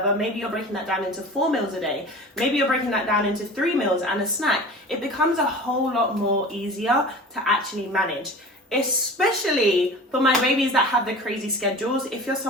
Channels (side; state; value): both; normal; correlation 0.38